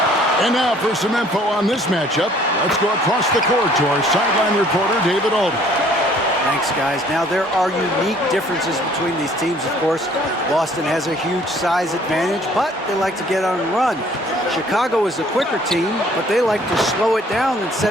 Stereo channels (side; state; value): both; normal; correlation 0.58